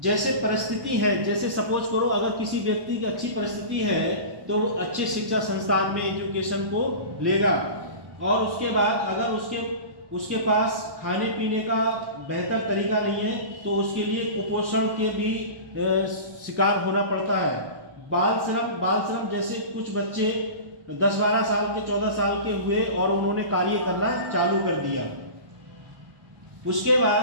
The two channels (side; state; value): left; late; 1.1 ms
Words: जैसे परिस्थिति है, जैसे सपोज करो अगर किसी व्यक्ति की अच्छी परिस्थिति है तो वो अच्छे शिक्षा संस्थान में एजुकेशन को लेगा, और उसके बाद अगर उसके पास खाने पीने का बेहतर तरीका नहीं है तो उसके लिए कुपोषण के भी शिकार होना पड़ता है। बाल श्रम जैसे कुछ बच्चे 10-12 साल के 14 साल के हुए और उन्होंने कार्य करना चालू कर दिया। उसके